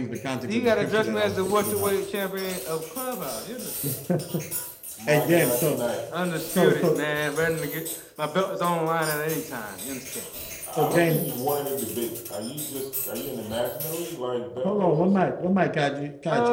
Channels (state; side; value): identical; both; correlation 1.00